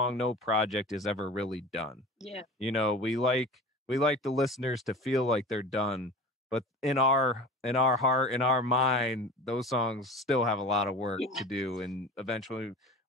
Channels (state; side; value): normal; both; correlation 0.35